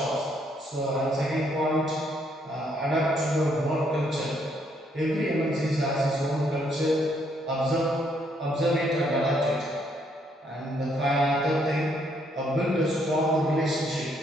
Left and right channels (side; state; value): both; normal; correlation 0.71